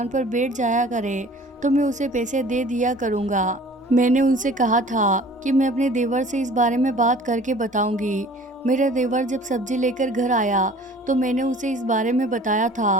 पर बैठ जाया करे तो मैं उसे पैसे दे दिया करूँगा। मैंने उनसे कहा था कि मैं अपने देवर से इस बारे में बात करके बताऊंगी। मेरा देवर जब सब्जी लेकर घर आया तो मैंने उसे इस बारे में बताया था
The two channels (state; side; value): normal; both; correlation 0.48